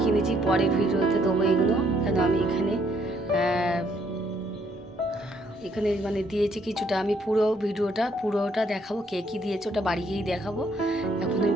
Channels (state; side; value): normal; both; correlation 0.69